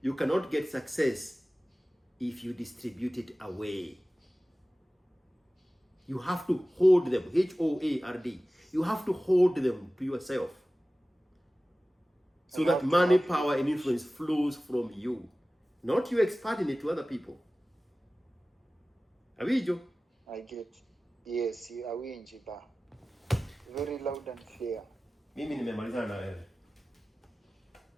you cannot get success if you distribute it away. You have to hold them, H-O-A-R-D. You have to hold them to yourself. So that money, power, and influence flows from you. Not you expanding it to other people. Awijo? I get. Yes, awinji ba. Very loud and clear. Mimi nimemalizana na wewe.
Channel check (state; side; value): normal; both; correlation 0.96